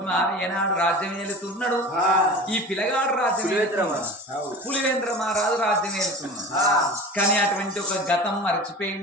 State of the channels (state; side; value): normal; both; correlation 0.35